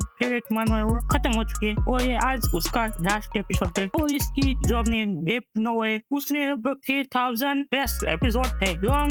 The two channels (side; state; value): both; identical; correlation 1.00